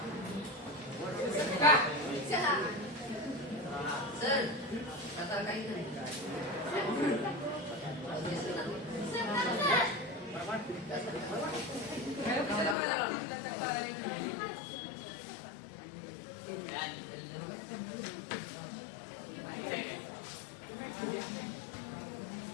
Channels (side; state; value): right; drops out; at 12.8 s